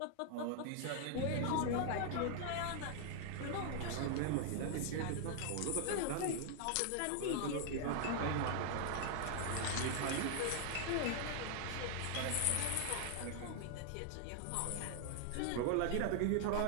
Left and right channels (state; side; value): different; both; correlation 0.00